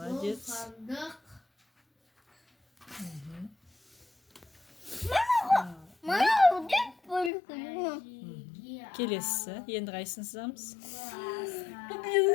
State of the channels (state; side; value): drops out; right; at 7.3 s